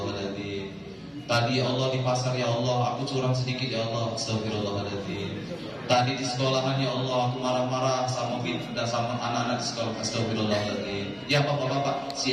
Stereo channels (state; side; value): identical; both; correlation 1.00